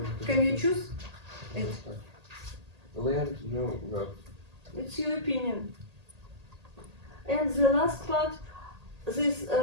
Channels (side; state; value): left; late; 1.8 ms